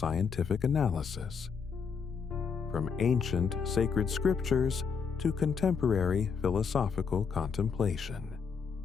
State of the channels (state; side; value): quieter; right; 6.1 dB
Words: analysis, from ancient sacred scriptures to contemporary philosophical contemplation.